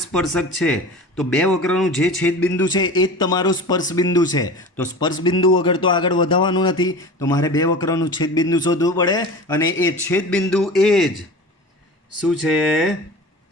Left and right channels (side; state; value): both; normal; correlation 0.35